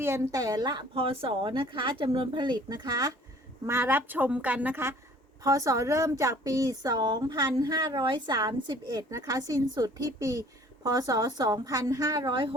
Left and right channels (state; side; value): normal; both; correlation 0.53